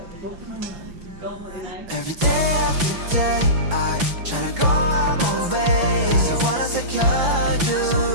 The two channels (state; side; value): late; left; 5.9 ms